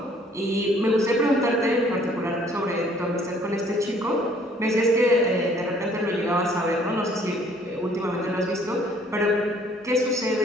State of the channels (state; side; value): normal; both; correlation 0.59